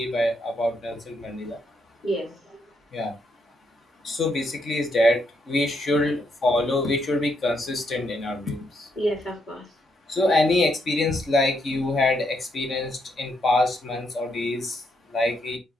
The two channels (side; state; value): both; normal; correlation 0.77